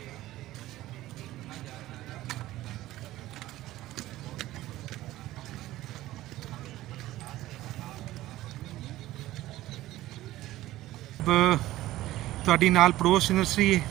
ਤੁਹਾਡੀ ਨਾਲ ਪੜੋਸ ਨਰਸਰੀ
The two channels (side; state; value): left; quieter; 15.9 dB